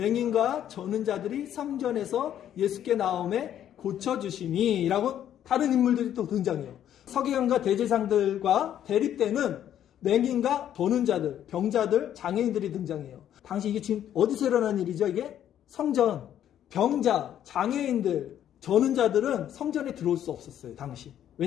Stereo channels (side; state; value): right; quieter; 10.6 dB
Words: 저는 자들이 성전에서 예수께 나오매 고쳐주시니 라고 다른 인물들이 또 등장해요. 서기관과 대제사장들과 대립되는 맹인과 버는 자들, 병자들, 장애인들이 등장해요. 당시 이게 지금 어디서 일어난 일이죠? 이게 성전, 병자, 장애인들, 저는 자들은 성전에 들어올 수 없었어요. 당시.